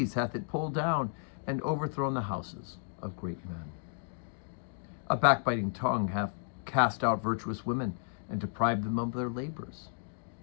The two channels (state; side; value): silent; right; digital silence